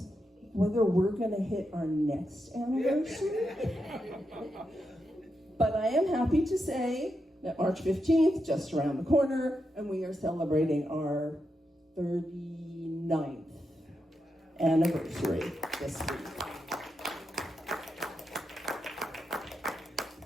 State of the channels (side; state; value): both; normal; correlation 0.85